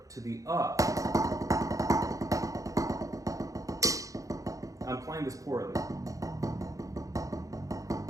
to the up. I'm playing this poorly.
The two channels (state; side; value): late; left; 0.16 ms